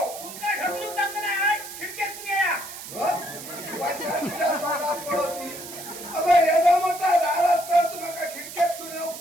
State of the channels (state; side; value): noise; right; hiss, 12 dB below the sound